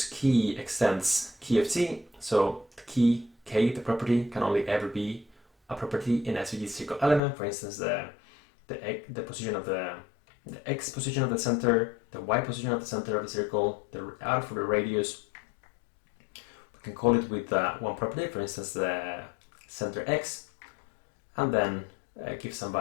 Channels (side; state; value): right; drops out; at 7.2 s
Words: key extends Keyof t, so key K, the property, can only ever be a property in SVG circle element. For instance, the position of the X position of the center, the Y position of the center of the circle, the R for the radius. We can call it with one property, for instance, the center X, and then give some